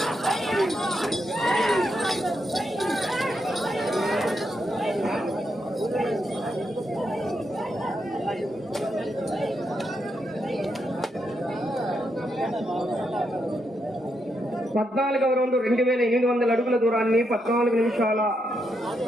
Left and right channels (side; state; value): both; normal; correlation 0.81